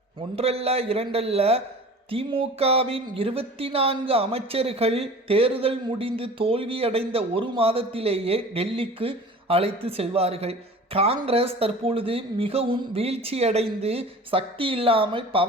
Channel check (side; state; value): both; normal; correlation 0.41